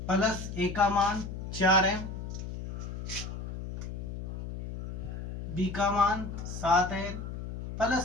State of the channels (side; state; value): left; noise; hum, 7 dB below the sound